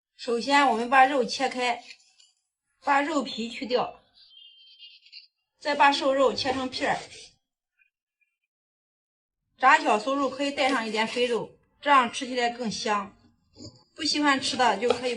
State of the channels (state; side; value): identical; both; correlation 1.00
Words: 首先我们把肉切开，把肉皮去掉，再把瘦肉切成片儿。炸小酥肉可以带上一点肥肉，这样吃起来更香。不喜欢吃的就可以